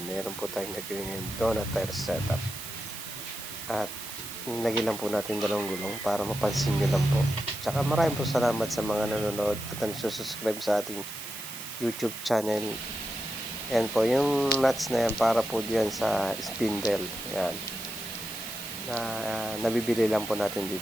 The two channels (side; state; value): right; noise; hiss, 10 dB below the sound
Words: meron po tayong naging donut tire setup. At nagilan po natin dalawang gulong para mapansin nyo lang po. Tsaka maraming po salamat sa mga nanonood at nagsusubscribe sa ating YouTube channel. Yan po, yung nuts na yan para po diyan sa spindle. Yan. Nabibili lang po natin